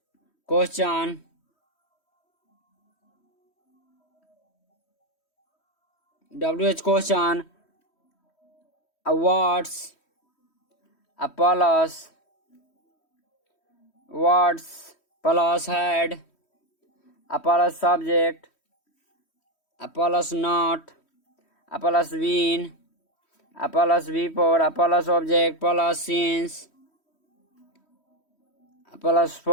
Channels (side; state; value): right; late; 3.1 ms